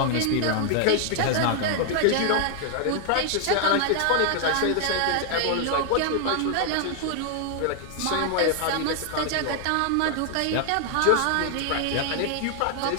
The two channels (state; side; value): different; both; correlation 0.00